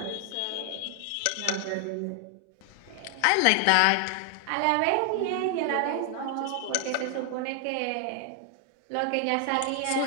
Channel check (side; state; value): both; different; correlation 0.00